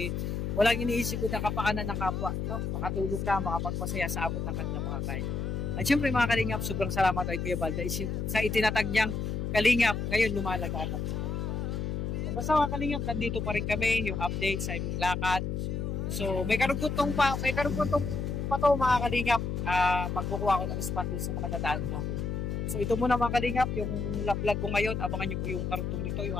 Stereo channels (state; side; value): noise; left; hum, 2 dB below the sound